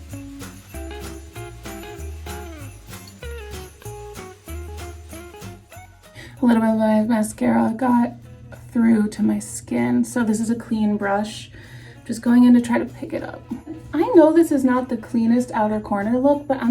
A little bit of my mascara got through to my skin, so this is a clean brush. Just going in to try to pick it up. I know this is not the cleanest outer corner look, but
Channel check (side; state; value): both; identical; correlation 1.00